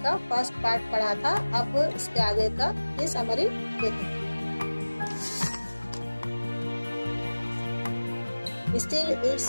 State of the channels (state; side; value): inverted; both; correlation -1.00